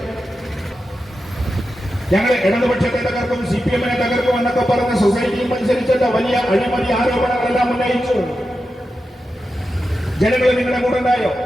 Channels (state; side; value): normal; both; correlation 0.90